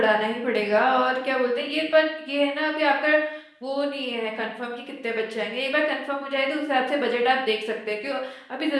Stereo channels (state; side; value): identical; both; correlation 1.00